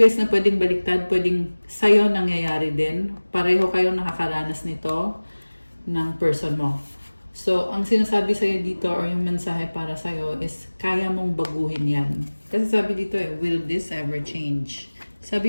na pwedeng baliktad, pwedeng sa'yo nangyayari din. Pareho kayong nakakaranas nito ng person mo. So, ang sinasabi sa'yo dito or yung mensahe para sa'yo is kaya mong baguhin yan. Kasi sabi dito will this ever change?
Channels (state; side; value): inverted; both; correlation -1.00